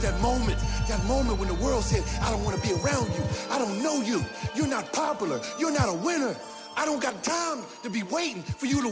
moment when the world said, I don't want to be around you. I don't know you. You're not popular. You're not a winner. I don't got time to be waiting for you to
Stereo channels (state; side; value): identical; both; correlation 1.00